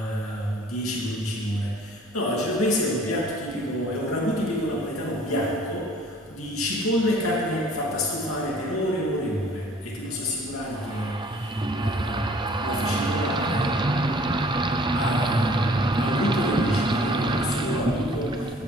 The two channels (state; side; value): normal; both; correlation 0.53